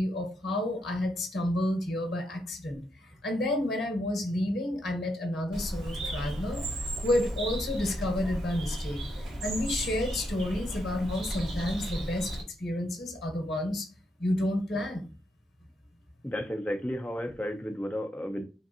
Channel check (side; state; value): both; normal; correlation 0.80